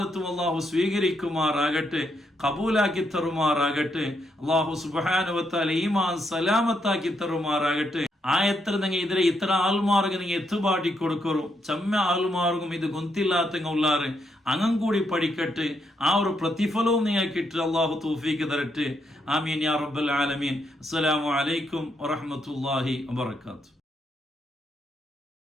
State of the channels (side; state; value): both; normal; correlation 0.78